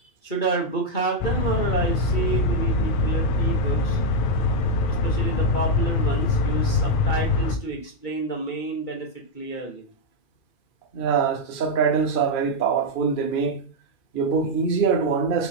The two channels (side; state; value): right; late; 2.4 ms